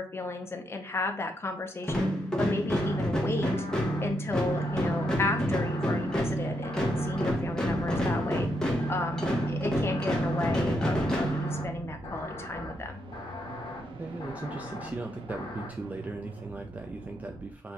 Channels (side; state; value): both; normal; correlation 0.79